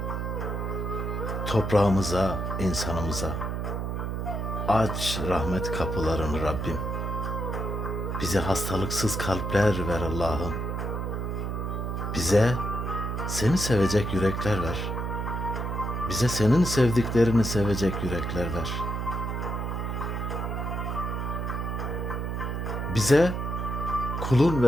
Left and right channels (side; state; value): right; noise; hum, 2 dB below the sound